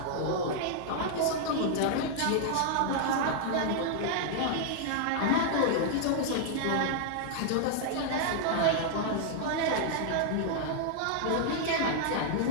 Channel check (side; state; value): both; different; correlation -0.01